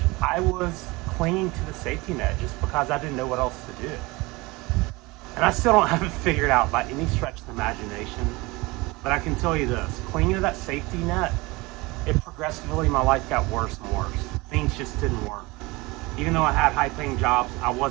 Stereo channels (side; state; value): left; quieter; 23.2 dB